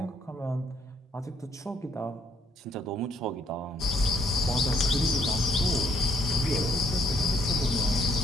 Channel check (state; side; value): normal; both; correlation 0.68